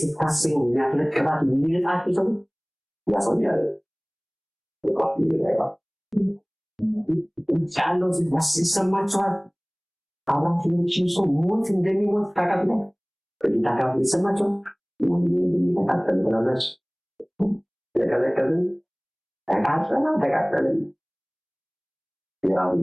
ስታስቡ የሚያፈለቅባት የሚልጣቸው ሰው ያሰኛል ቻለው ሲሰማቸዋል አባቶችን ሰው ሞት እንደሚሞት ታውቃለ ታውቃለ ይሰማቸው እንደሚተካከል ብላለች ለከለከልን ተቃጠለን ያው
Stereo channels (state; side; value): identical; both; correlation 1.00